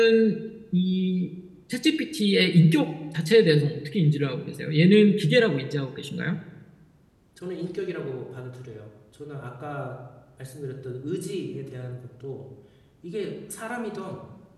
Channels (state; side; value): identical; both; correlation 1.00